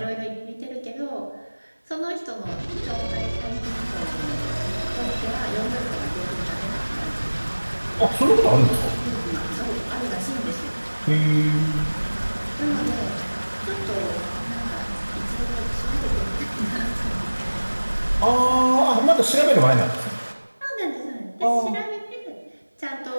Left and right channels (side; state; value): both; inverted; correlation -1.00